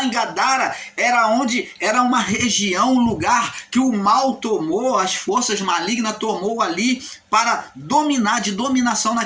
em Gadara era uma região, um lugar que o mal tomou, as forças malignas tomou ali para dominar, de dominação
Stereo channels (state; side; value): identical; both; correlation 1.00